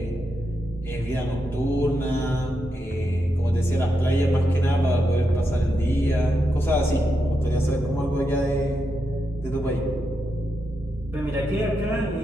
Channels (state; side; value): normal; both; correlation 0.85